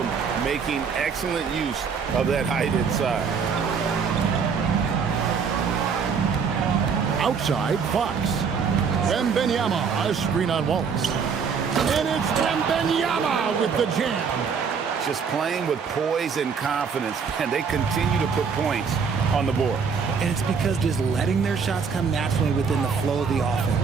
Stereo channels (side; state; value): left; quieter; 6.0 dB